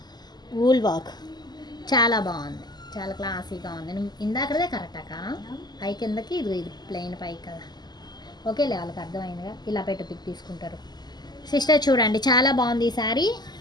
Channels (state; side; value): late; right; 0.20 ms